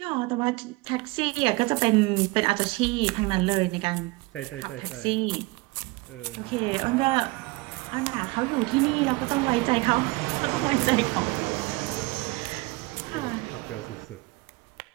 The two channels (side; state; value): left; quieter; 24.1 dB